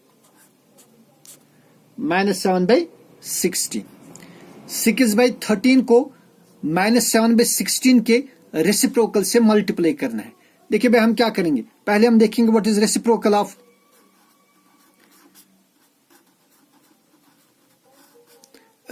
-7/16। 6/13 को -7/16 के रेसिप्रोकल से मल्टीप्लाई करना है। देखिए भाई, हम क्या करेंगे, पहले हम देखेंगे व्हाट इज रेसिप्रोकल ऑफ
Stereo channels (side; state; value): both; identical; correlation 1.00